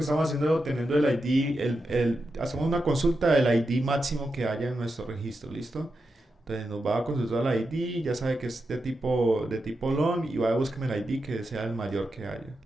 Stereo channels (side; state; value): both; normal; correlation 0.88